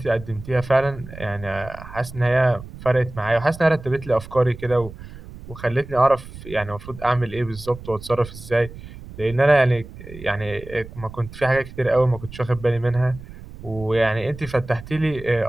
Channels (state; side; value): noise; right; rumble, 15 dB below the sound